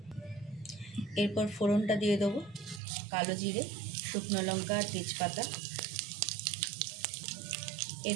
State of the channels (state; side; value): drops out; left; at 2.8 s